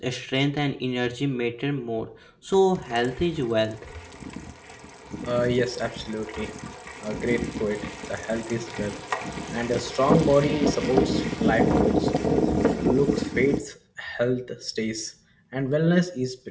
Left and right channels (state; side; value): identical; both; correlation 1.00